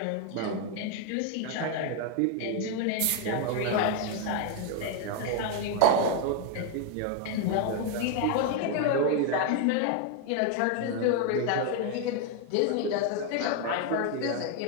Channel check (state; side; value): different; both; correlation 0.01